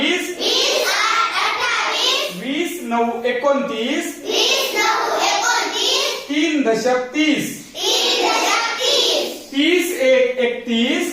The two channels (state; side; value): identical; both; correlation 1.00